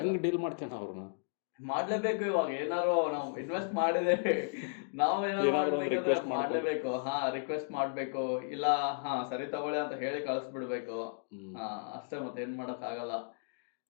ಹೆಂಗ್ ಡೀಲ್ ಮಾಡ್ತೇನೆ ಅವ್ರನ್ನ? ಮಾಡ್ಲೇಬೇಕು. ಇವಾಗ ಏನಾರು ನಾವು ಇನ್ವೆಸ್ಟ್ ಮಾಡಿದೇವೆ, ನಾವು ಏನಾದ್ರು ಮಾಡ್ಲೇಬೇಕು. ರಿಕ್ವೆಸ್ಟ್ ಮಾಡ್ಬೇಕು, ಇಲ್ಲ ಸರಿ ತಗೊಳ್ಳಿ ಅಂತ ಹೇಳಿ ಕಳಿಸ್ಬಿಡ್ಬೇಕು. ಅಷ್ಟೇ, ಮತ್ತೆ ಏನ್ ಮಾಡಕ್ ಆಗಲ್ಲ.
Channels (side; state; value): right; silent; digital silence